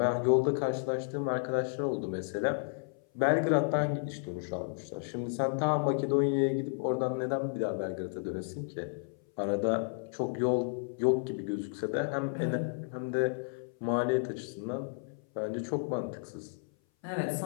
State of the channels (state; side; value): silent; right; 56 dB below the other